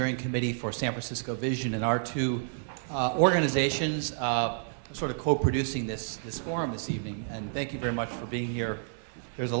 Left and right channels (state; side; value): silent; left; digital silence